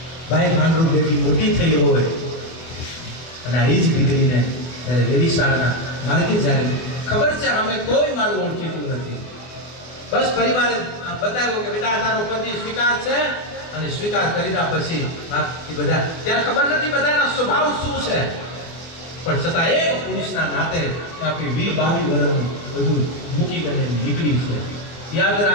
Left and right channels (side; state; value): right; late; 24 ms